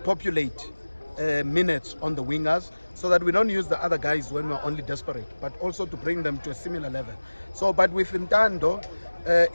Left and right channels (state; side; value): inverted; both; correlation -1.00